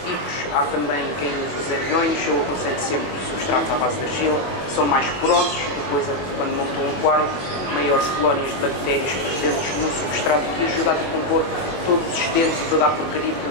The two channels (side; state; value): right; late; 22 ms